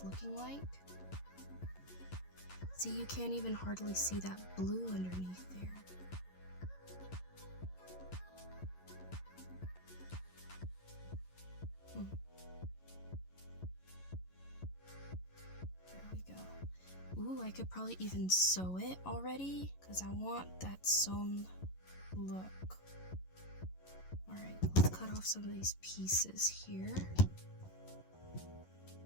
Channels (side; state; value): right; late; 11 ms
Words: looking like. See, you can't even hardly see that blue underneath there. There we go. Ooh, I could probably even sew it already, because I want that sewn look. Alright, let's cut off some of these pieces here.